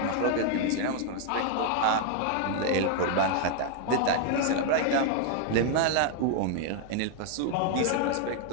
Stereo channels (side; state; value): both; different; correlation 0.00